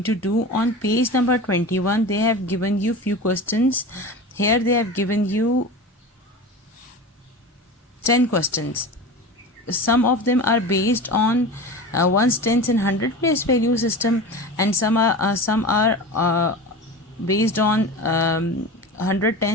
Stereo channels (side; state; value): both; normal; correlation 0.31